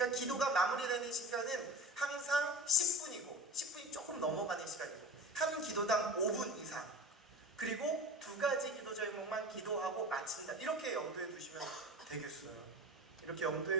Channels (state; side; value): normal; both; correlation 0.35